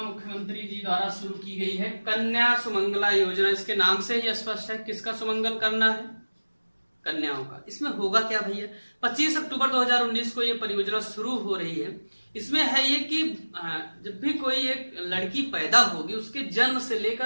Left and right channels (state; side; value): inverted; both; correlation -1.00